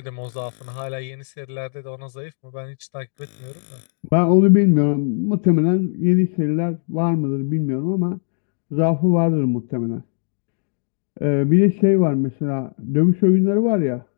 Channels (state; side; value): silent; right; digital silence